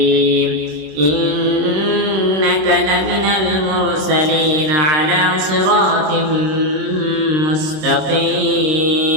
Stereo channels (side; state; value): left; late; 26 ms